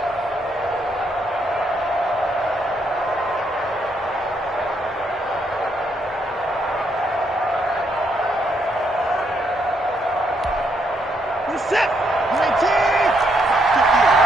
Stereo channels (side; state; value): both; normal; correlation 0.75